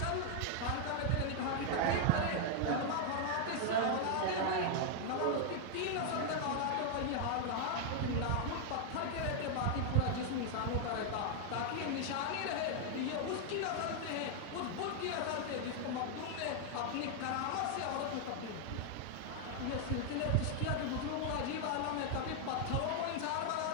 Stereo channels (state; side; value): different; both; correlation 0.00